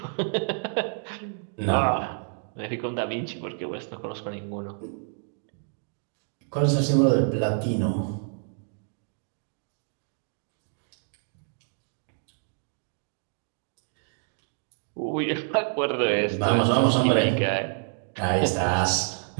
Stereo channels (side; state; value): left; silent; 56 dB below the other